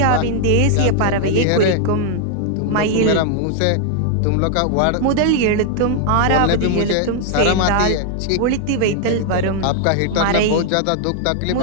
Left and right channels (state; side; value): different; both; correlation 0.00